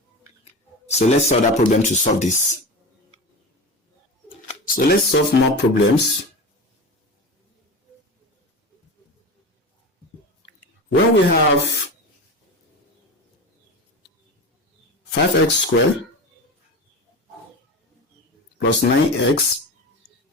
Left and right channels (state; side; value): normal; both; correlation 0.27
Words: So let's solve that problem to solve this. So let's solve more problems. When we have 5x squared plus 9x